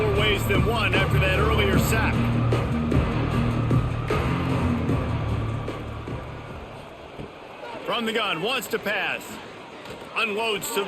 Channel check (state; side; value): identical; both; correlation 1.00